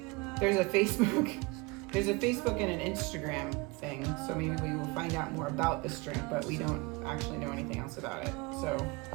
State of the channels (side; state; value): left; quieter; 26.2 dB